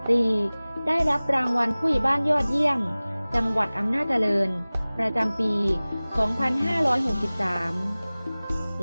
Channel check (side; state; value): both; inverted; correlation -0.99